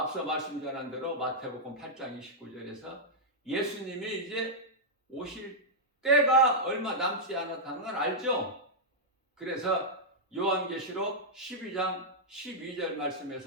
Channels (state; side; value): normal; both; correlation -0.07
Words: 말씀 전한 대로 마태복음 8장 29절에서 예수님이 이제 오실 때가 얼마 남지 않았다는 걸 알죠. 그래서 요한계시록 12장 12절